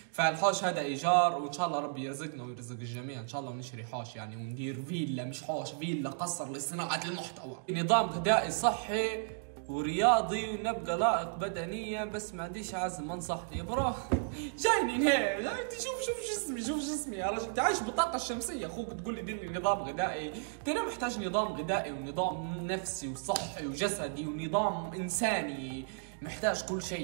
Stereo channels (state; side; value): silent; left; digital silence